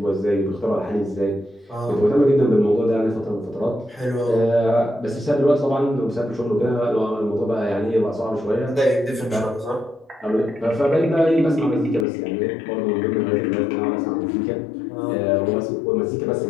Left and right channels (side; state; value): right; drops out; at 12.1 s